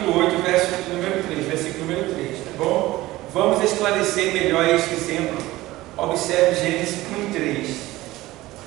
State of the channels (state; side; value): quieter; left; 17.8 dB